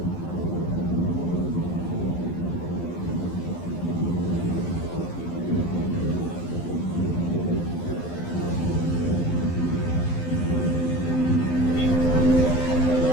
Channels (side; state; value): right; late; 12 ms